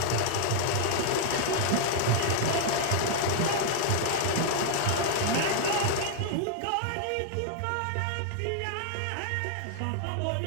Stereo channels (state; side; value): different; both; correlation -0.01